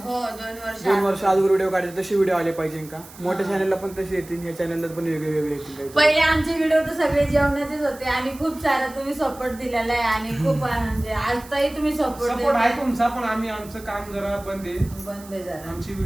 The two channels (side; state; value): right; noise; hiss, 20 dB below the sound